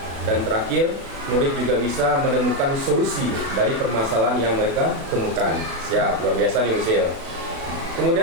dan terakhir murid juga bisa menemukan solusi dari permasalahan yang mereka temukan. Siap, luar biasa nih Bu Sil.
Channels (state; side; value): late; left; 36 ms